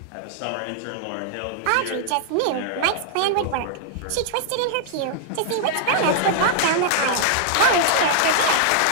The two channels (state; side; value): different; both; correlation -0.01